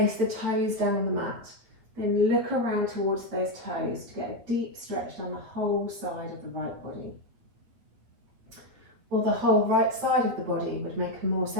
the toes down on the mat. Then look around towards those toes to get a deep stretch down the whole side of the right body. Or the whole right side of the body would make a more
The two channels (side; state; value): left; late; 8.9 ms